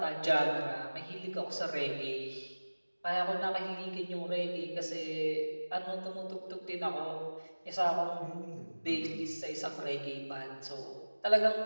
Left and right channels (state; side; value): inverted; both; correlation -1.00